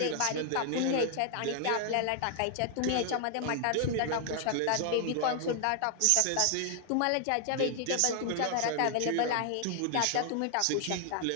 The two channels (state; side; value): different; both; correlation 0.00